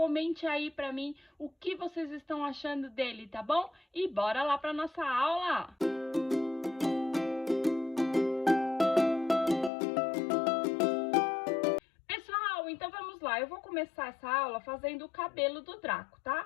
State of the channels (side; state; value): right; drops out; at 9.7 s